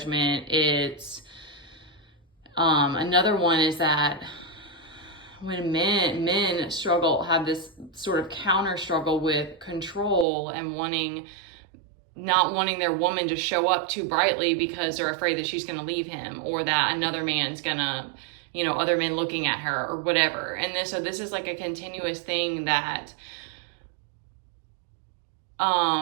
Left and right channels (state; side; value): drops out; left; at 10.2 s